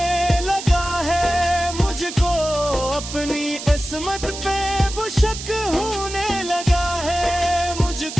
लगा है मुझको। अपनी इस्मत पे वो शक होने लगा है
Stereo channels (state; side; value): noise; right; hiss, 9 dB below the sound